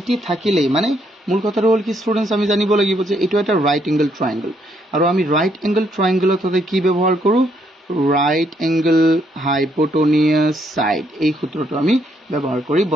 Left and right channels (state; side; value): normal; both; correlation 0.73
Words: থাকিলেই মানে মূল কথাটো হল কি স্টুডেন্টস আমি জানিব লাগিব যে এটো এটা রাইট এঙ্গেল ট্রায়াঙ্গেল আৰু আমি ৰাইট এঙ্গেল ট্ৰায়াঙ্গেলত হতে কি ব্যৱহাৰ কৰো ৰাইট এঙ্গেল হাইপোটেনিয়াস সাইড এই সূত্ৰটো আমি ব্যৱহাৰ কৰি